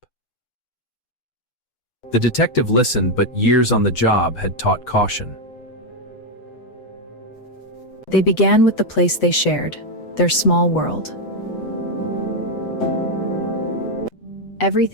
The detective listened, but years on the job had taught caution. They began with the place they shared, their small world.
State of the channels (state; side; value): late; right; 8.0 ms